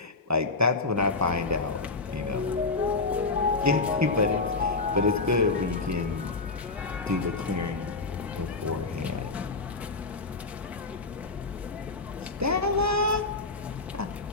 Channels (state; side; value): quieter; right; 3.7 dB